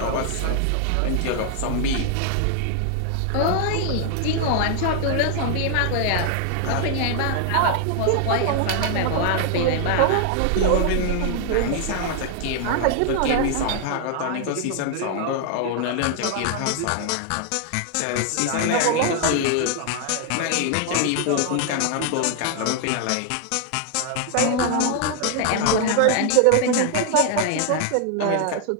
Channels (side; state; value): both; different; correlation 0.00